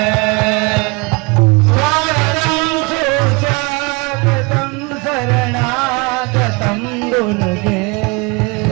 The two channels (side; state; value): left; quieter; 28.2 dB